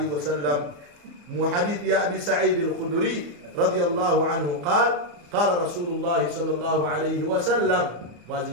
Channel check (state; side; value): late; left; 34 ms